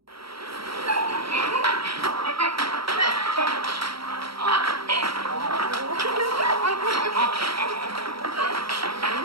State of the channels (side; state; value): left; late; 0.75 ms